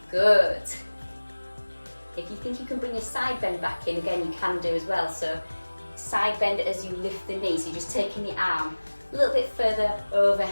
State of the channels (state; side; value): inverted; both; correlation -1.00